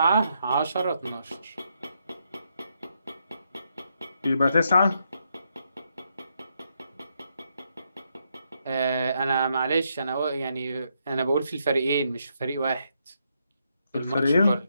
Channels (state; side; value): inverted; both; correlation -0.78